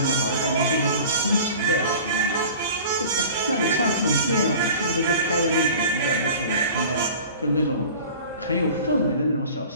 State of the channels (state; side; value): inverted; both; correlation -0.41